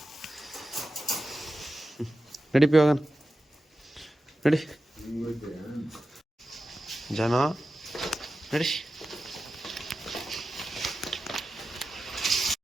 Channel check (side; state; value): both; normal; correlation 0.93